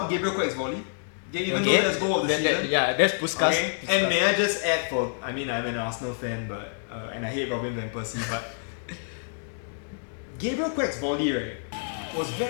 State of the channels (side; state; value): right; silent; digital silence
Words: Gabriel Quack's volley. Even though that's goal of the season. That's Puskas. Okay, and may I just add I'm an Arsenal fan, but and I hate Robin van Persie, but Gabriel Quack's volley, right, was